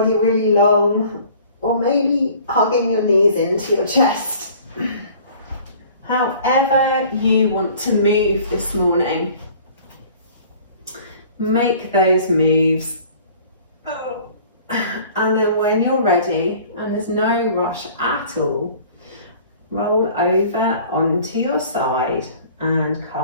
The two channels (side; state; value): both; inverted; correlation -0.50